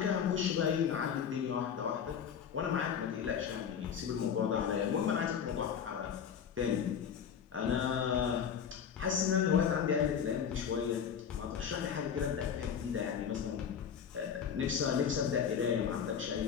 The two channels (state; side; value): quieter; right; 7.7 dB